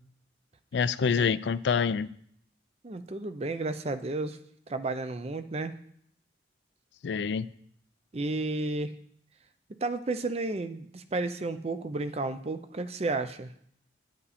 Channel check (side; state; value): both; normal; correlation 0.34